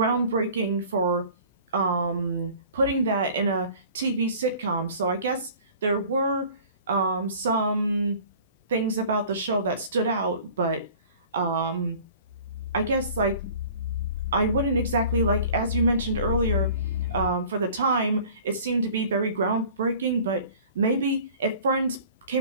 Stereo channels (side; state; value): both; inverted; correlation -0.47